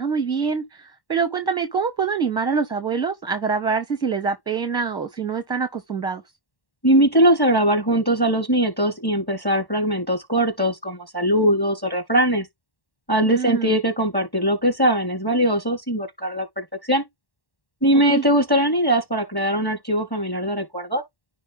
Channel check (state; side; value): late; right; 1.1 ms